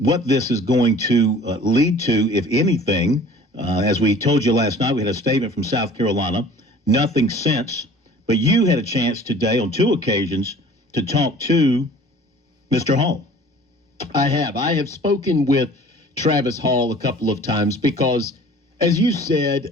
this is going to lead to, if anything. As we told you last night, we had a statement from South Carolina. Nothing since. But you had a chance today on 2 occasions to talk to Mr. Hall. I have spoken with Travis Hall a couple of times because, as you said,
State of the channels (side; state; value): both; normal; correlation 0.47